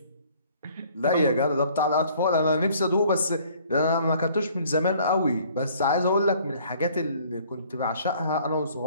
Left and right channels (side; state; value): both; inverted; correlation -0.57